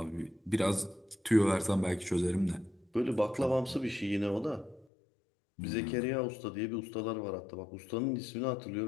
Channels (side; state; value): right; drops out; at 4.9 s